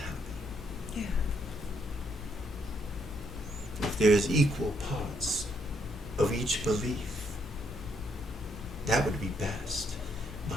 Yeah. If there is equal parts of each belief, that would be best.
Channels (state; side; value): normal; both; correlation 0.73